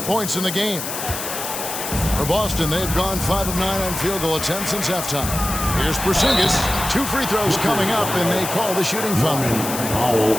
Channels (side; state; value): left; noise; hiss, 6 dB below the sound